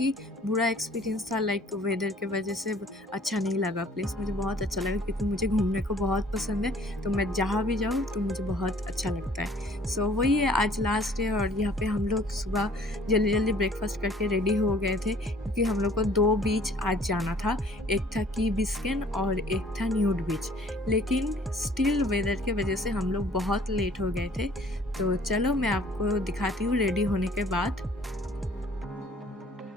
बुरा एक्सपीरियंस था, लाइक वेदर के वजह से अच्छा नहीं लगा। प्लेस मुझे बहुत अच्छा लगा क्योंकि मुझे घूमने को बहुत पसंद है, तो मैं जहाँ भी जाऊँ तो मुझे बहुत अच्छा लगता है। वही है, आज लास्ट डे और यहाँ पे हम लोग सुबह जल्दी जल्दी ब्रेकफास्ट करके रेडी हो गए थे क्योंकि हम लोग को 2 बीच आज जाना था। एक था की बिस्किन और एक था न्यूड बीच, लेकिन स्टिल वेदर के वजह से हम लोग बहुत लेट हो गए थे। तो चलो मैं आपको दिखाती हूँ रेडी होने के बाद।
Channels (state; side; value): normal; both; correlation 0.55